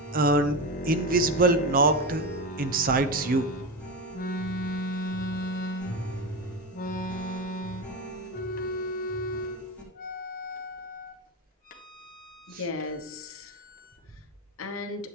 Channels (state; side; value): normal; both; correlation 0.18